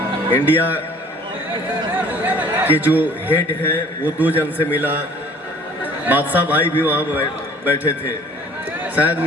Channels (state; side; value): normal; both; correlation 0.51